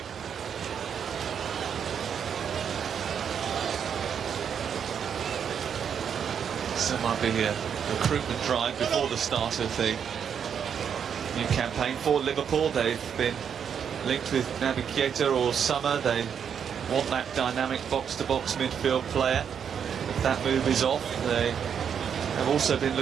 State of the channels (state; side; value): quieter; left; 7.7 dB